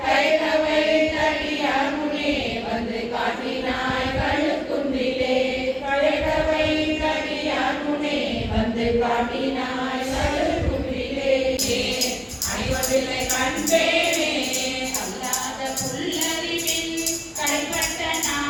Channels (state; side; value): identical; both; correlation 1.00